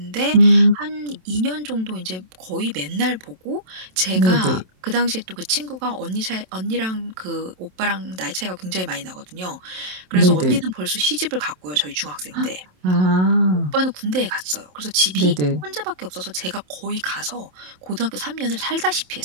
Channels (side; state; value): left; late; 27 ms